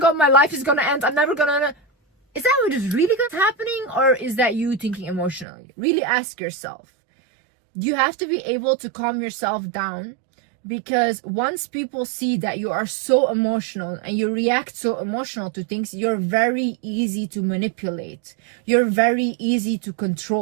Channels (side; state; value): left; drops out; at 5.5 s